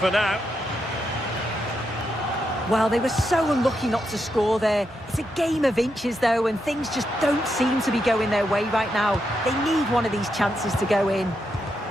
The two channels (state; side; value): normal; both; correlation 0.83